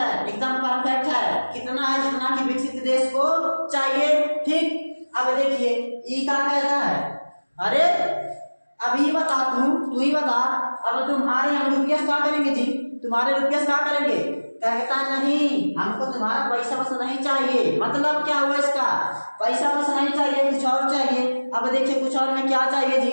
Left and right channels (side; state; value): both; inverted; correlation -1.00